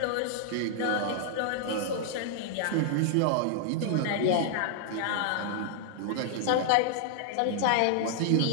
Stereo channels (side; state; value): both; different; correlation -0.01